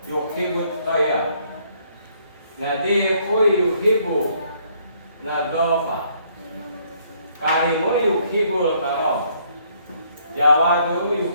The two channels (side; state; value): both; inverted; correlation -0.66